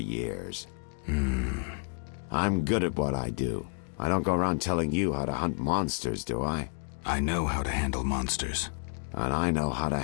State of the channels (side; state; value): right; silent; digital silence